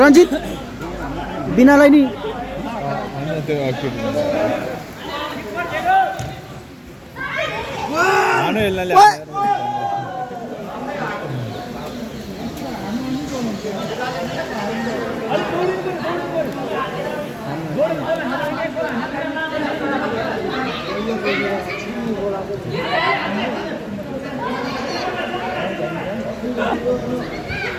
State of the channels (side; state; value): both; identical; correlation 1.00